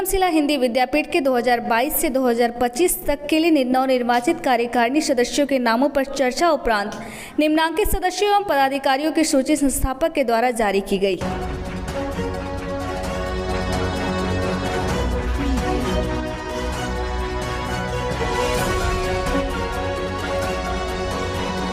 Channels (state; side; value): identical; both; correlation 1.00